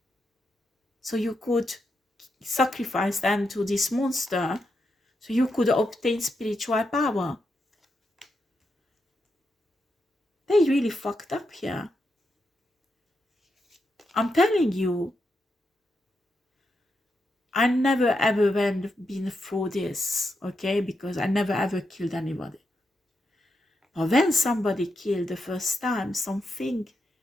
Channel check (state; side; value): normal; both; correlation 0.84